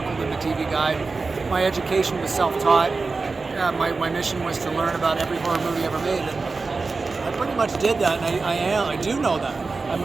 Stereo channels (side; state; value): left; quieter; 4.0 dB